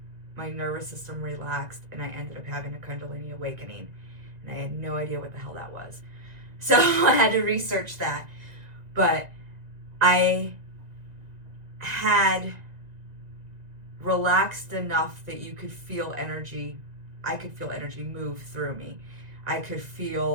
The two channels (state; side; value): late; left; 2.0 ms